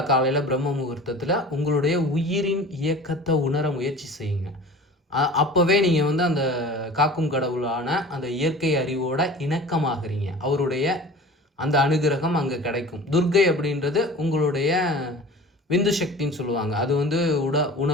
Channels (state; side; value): normal; both; correlation 0.40